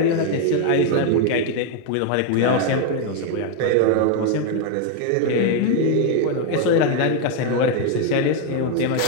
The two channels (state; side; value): different; both; correlation 0.01